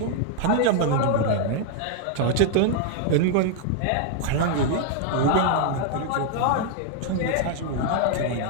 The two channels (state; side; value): different; both; correlation 0.00